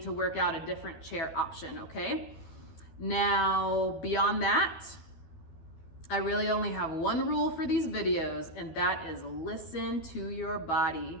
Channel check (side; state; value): right; late; 12 ms